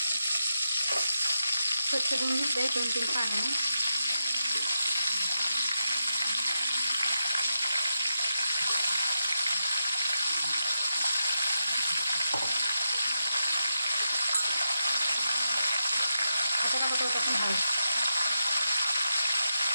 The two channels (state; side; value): inverted; both; correlation -0.87